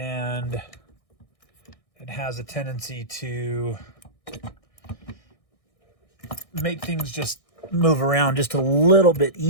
it has a tendency to make things just move around just a little bit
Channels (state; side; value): late; right; 1.6 ms